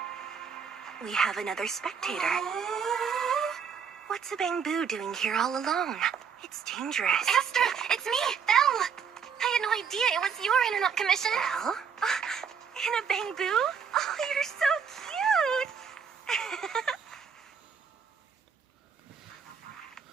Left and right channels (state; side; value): quieter; left; 6.8 dB